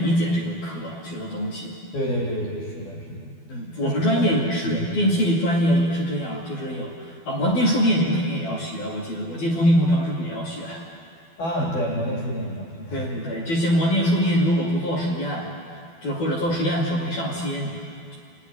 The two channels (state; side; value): late; right; 12 ms